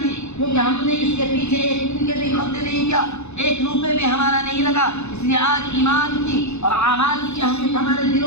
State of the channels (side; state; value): right; late; 0.81 ms